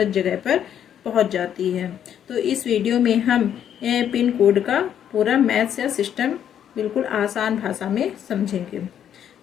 जगह पर पहुंच जाती है। तो इस वीडियो में हम पिन कोड का पूरा मैथ्स या सिस्टम बिल्कुल आसान भाषा में समझेंगे।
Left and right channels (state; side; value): quieter; right; 9.5 dB